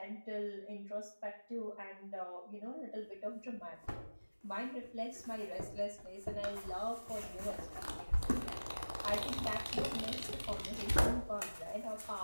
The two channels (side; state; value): both; inverted; correlation -1.00